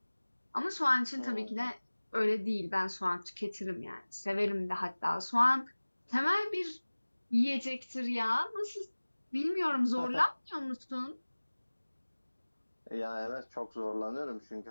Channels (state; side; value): inverted; both; correlation -1.00